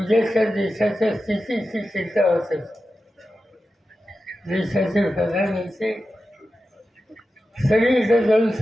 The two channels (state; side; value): normal; both; correlation 0.92